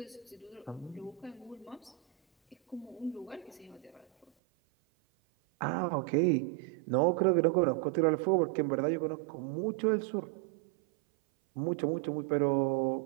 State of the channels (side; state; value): left; drops out; at 4.3 s